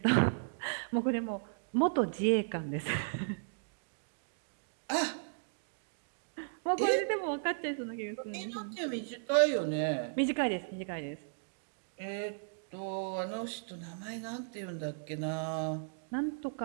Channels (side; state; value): left; silent; digital silence